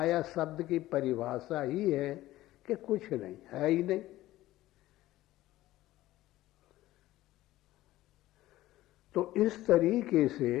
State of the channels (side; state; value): right; quieter; 16.0 dB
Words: शब्द की परिभाषा ही है कि कुछ नहीं है, ही नहीं। तो इस तरीके